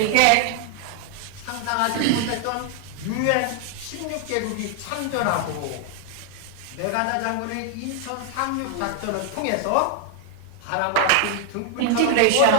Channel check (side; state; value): both; different; correlation 0.00